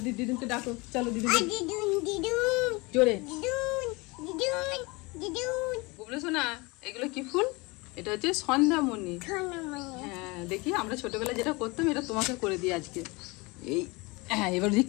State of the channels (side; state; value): right; quieter; 25.5 dB